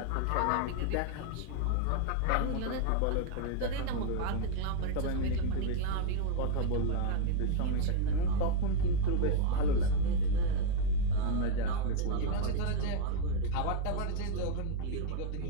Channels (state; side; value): different; both; correlation 0.00